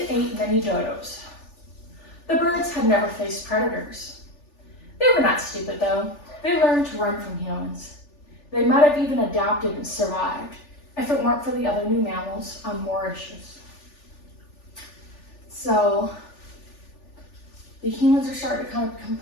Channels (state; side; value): late; right; 3.4 ms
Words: and ate many dodos. The birds had never faced predators. They were not stupid though. They learned to run from humans. They might have even adapted and survived if it weren't for the other new mammals on Mauritius. So the humans are starting to kind of become